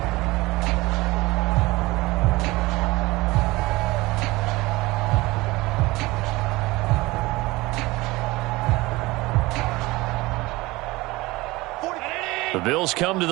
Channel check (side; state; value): left; quieter; 20.9 dB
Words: The Bills come to